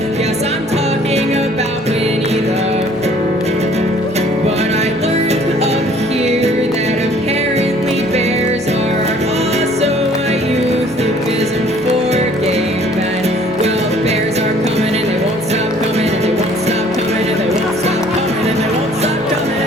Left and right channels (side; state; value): both; normal; correlation 0.56